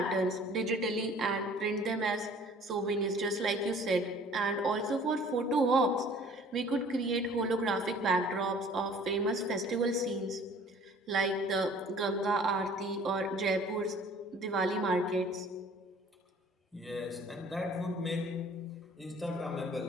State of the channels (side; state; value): both; normal; correlation 0.51